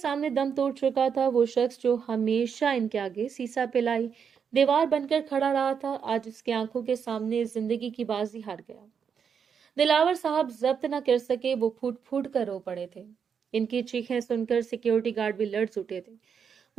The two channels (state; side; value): quieter; left; 6.9 dB